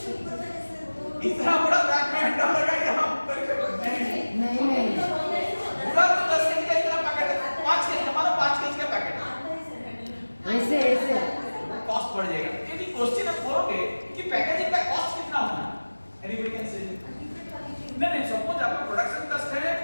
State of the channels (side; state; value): both; inverted; correlation -1.00